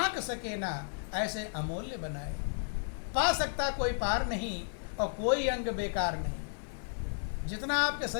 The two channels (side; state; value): right; silent; 56 dB below the other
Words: सके ना, ऐसे अमूल्य बनाए। पा सकता कोई पार नहीं और कोई अंग बेकार नहीं। जितना आपके